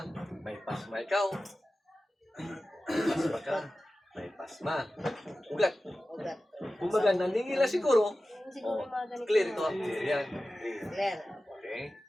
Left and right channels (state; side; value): normal; both; correlation 0.95